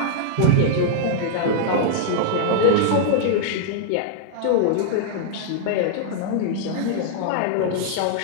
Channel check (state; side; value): different; both; correlation -0.01